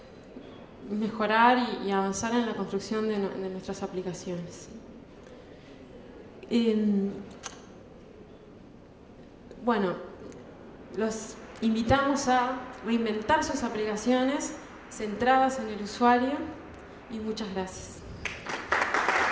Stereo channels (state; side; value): identical; both; correlation 1.00